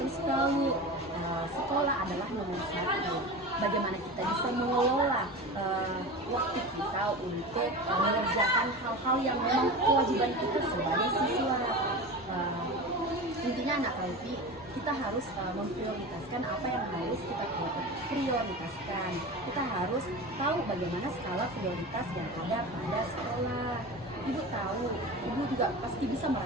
tahu sekolah adalah nomor satu. Bagaimana kita bisa mengelola waktu kita untuk mengerjakan hal-hal yang memang kewajiban kita sebagai siswa. Intinya anak Kalvi, kita harus memprioritaskan apa yang harus kita prioritaskan. Kita harus tahu bagaimana skala prioritas yang ada pada sekolah. Ibu tahu, Ibu juga pasti bisa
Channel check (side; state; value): both; normal; correlation 0.29